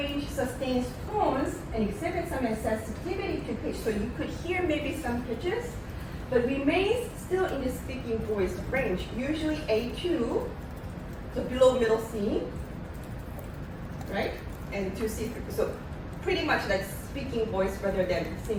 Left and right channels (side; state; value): both; identical; correlation 1.00